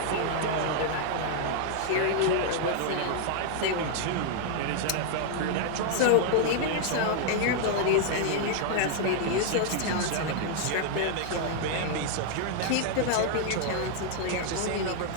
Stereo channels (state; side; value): different; both; correlation 0.00